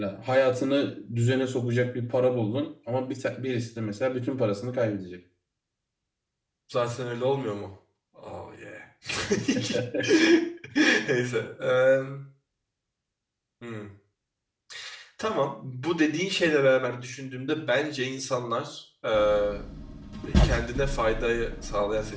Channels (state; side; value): identical; both; correlation 1.00